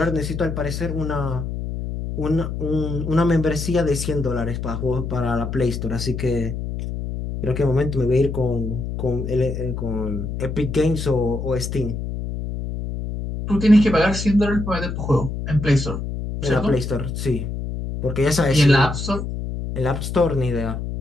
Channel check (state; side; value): noise; left; hum, 5 dB below the sound